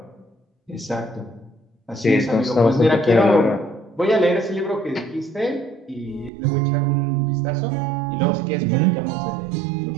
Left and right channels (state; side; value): drops out; left; at 6.3 s